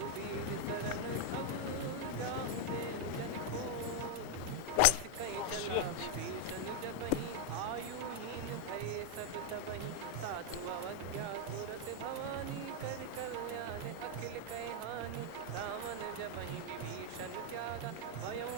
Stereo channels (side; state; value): both; different; correlation 0.01